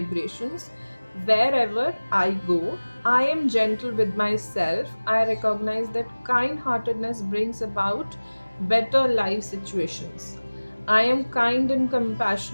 wherever I go, I am gentle with myself, I recognize that kindheartedness brings about better life situations. I am kind and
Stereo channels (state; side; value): inverted; both; correlation -1.00